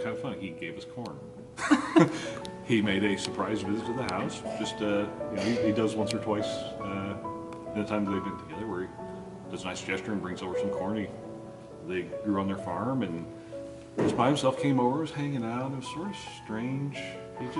of fun. He gave us corn. He made a surprise visit to the house. Just, he does once or twice the times they've been together where he does a nice gesture and brings over some corn they grew on their farm, and just by himself came over, was hanging out. It was sort of strange. He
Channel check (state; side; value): identical; both; correlation 1.00